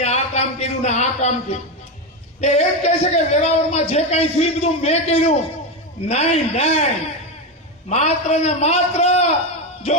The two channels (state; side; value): normal; both; correlation 0.13